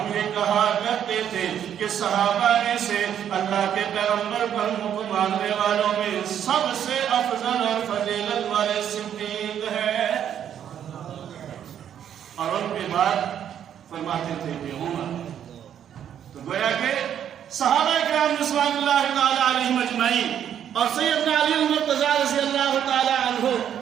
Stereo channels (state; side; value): quieter; left; 9.5 dB